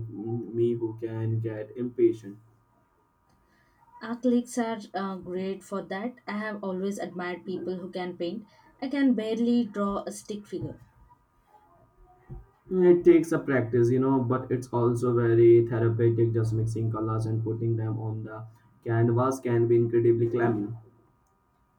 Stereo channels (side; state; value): both; identical; correlation 1.00